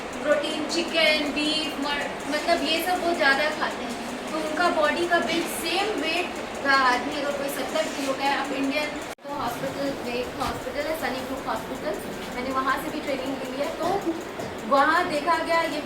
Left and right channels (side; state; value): both; identical; correlation 1.00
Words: प्रोटीन चिकन बीफ मतलब ये सब वो ज़्यादा खाते हैं। तो उनका बॉडी का बिल्ड सेम वेट का आदमी अगर कोई 70 किलो का है, आप इंडियन तो हॉस्पिटल में एक हॉस्पिटल है सनी ग्रुप हॉस्पिटल, मैंने वहाँ से भी ट्रेनिंग ली है। तो वहाँ देखा गया, ये